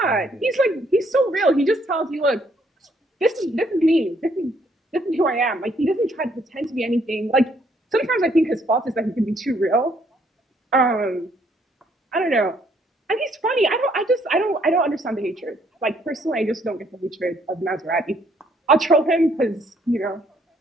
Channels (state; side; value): normal; both; correlation 0.67